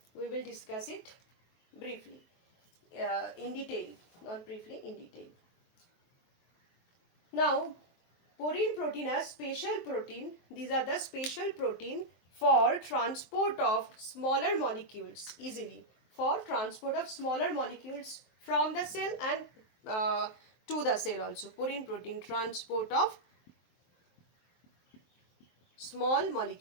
we will discuss it briefly, in detail, not briefly, in detail. Now, porine protein are special protein. These are the special protein for transport of smaller molecules easily, for transport of smaller molecules from the cell and to the cell also. Purine protein, transport of small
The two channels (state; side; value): late; right; 23 ms